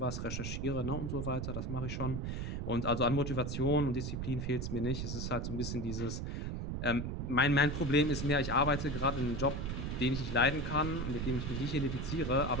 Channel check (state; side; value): noise; right; rumble, 3 dB below the sound